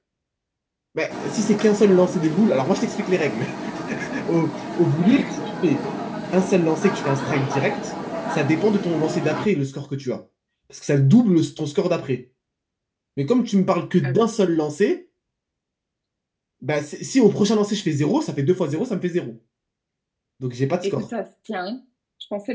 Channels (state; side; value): identical; both; correlation 1.00